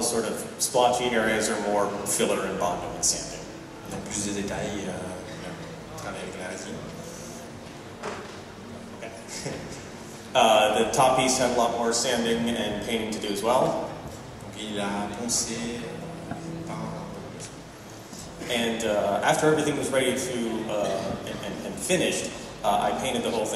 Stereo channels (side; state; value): both; identical; correlation 1.00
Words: sort of splotchy areas are more filler and Bondo and sanding. Donc plus de détails, travailler avec la résine. Okay. The top piece had a lot more sanding and painting to do as well. Donc il a poncé, peint. And after everything was ready to and finished, I painted the whole